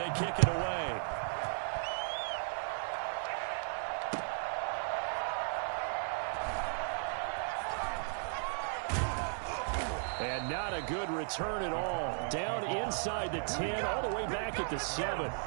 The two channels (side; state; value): left; silent; 54 dB below the other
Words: kick it away. And not a good return at all. Down inside the 10, all the way back at the 7.